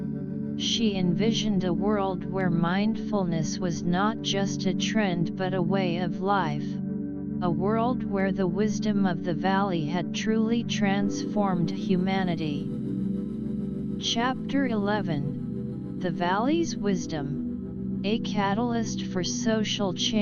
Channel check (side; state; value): both; identical; correlation 1.00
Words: She envisioned a world where mindfulness was not just a trend but a way of life, a world where the wisdom of the valley had truly transformed humanity. Chapter 11: The Valley's Wisdom, a Catalyst for Social